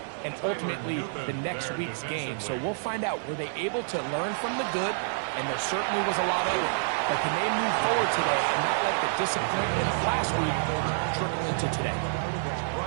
and ultimately the next week's game. So we'll find out, were they able to learn from the good? And there certainly was a lot of it. But can they move forward today and not let the disappointment of last week trickle into today?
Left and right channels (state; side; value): silent; left; 59 dB below the other